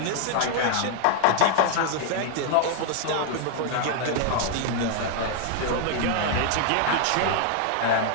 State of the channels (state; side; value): different; both; correlation 0.00